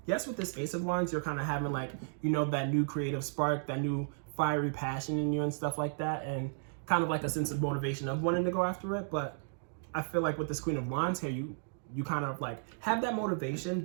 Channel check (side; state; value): left; silent; digital silence